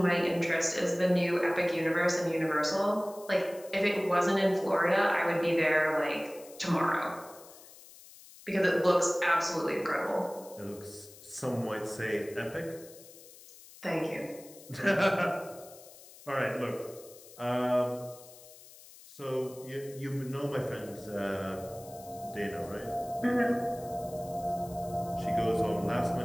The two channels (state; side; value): noise; left; hiss, 20 dB below the sound